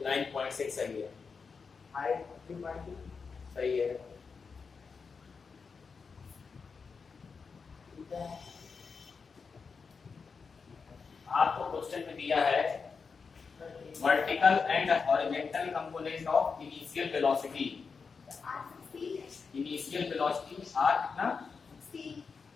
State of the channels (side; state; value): right; quieter; 5.2 dB